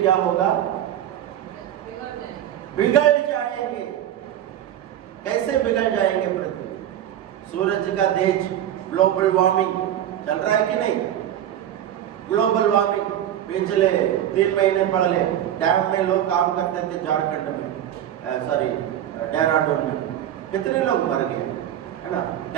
होगा? बिगड़ जाएंगे। कैसे बिगड़ जाएंगे पृथ्वी? सूरज का तेज, ग्लोबल वार्मिंग चल रहा है कि नहीं? ग्लोबल वार्मिंग पिछले 3 महीने पहले डैम में लोग काम करते थे, झारखंड में, सॉरी देहरादून में, कितने लोग मर गए, है ना?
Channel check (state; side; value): quieter; left; 11.1 dB